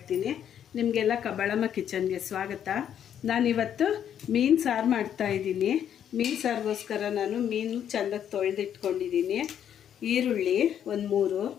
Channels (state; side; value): quieter; right; 9.4 dB